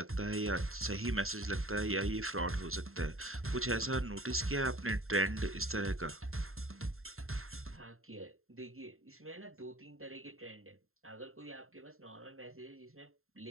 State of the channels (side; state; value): left; late; 0.61 ms